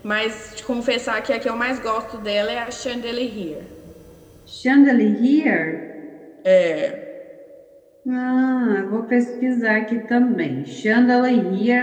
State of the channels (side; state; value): both; identical; correlation 1.00